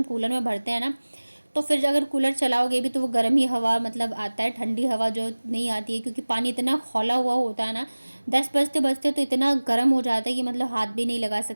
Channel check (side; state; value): both; inverted; correlation -1.00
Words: कूलर में भरते हैं ना तो फिर अगर कूलर चलाओगे भी तो वो गर्म ही हवा आता है, ठंडी हवा जो नहीं आती है। क्योंकि पानी इतना खौला हुआ होता है ना, 10 बजते बजते तो इतना गर्म हो जाता है कि हाथ भी नहीं लगा